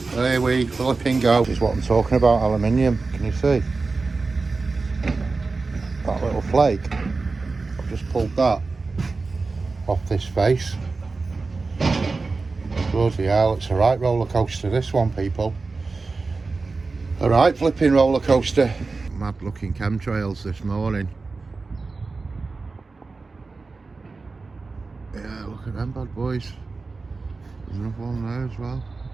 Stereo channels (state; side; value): quieter; left; 4.0 dB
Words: There we flipping go. This is what I'm talking about, aluminium. Can you see? That little flake. I've just pulled that off this face. Bloody hell, it's a right roller coaster, this one, people. A right flipping roller coaster. Mad looking chemtrails this morning. Yeah, look at them bad boys. There's another one there as well.